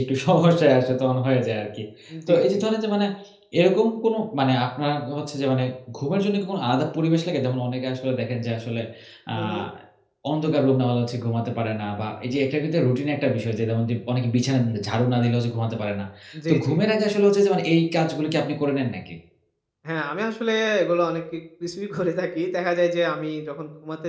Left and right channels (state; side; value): identical; both; correlation 1.00